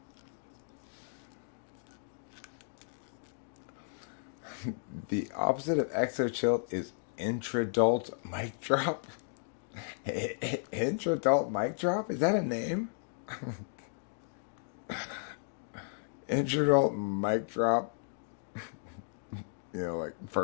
The opposite of Exochill is intradult mic drop. Intradult mic drop? Is that a name? Intradult mic drop. Like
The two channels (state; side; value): silent; right; digital silence